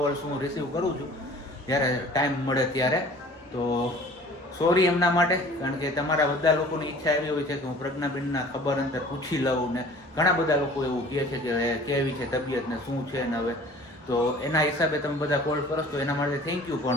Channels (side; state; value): both; normal; correlation 0.47